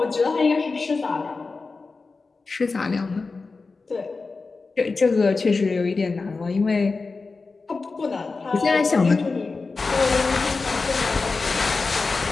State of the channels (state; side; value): quieter; right; 4.1 dB